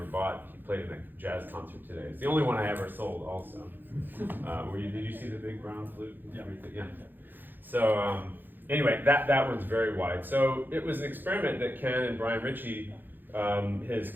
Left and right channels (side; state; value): left; late; 0.091 ms